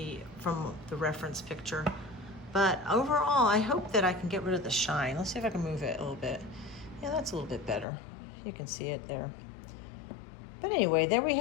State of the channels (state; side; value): drops out; right; at 7.9 s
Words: from the reference picture. But overall, I hope that I can get rid of the shine. Let's see if I can move it a little bit. Yeah, that's a little bit better. You can see it there. But anyway, there